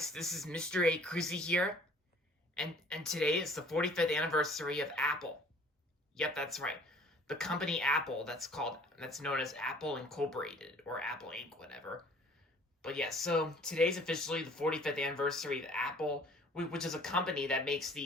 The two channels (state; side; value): normal; both; correlation 0.53